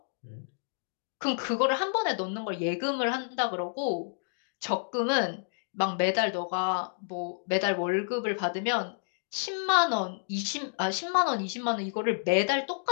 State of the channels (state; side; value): silent; right; digital silence